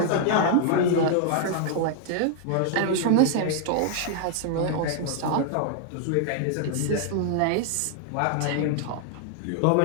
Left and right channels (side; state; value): both; different; correlation 0.00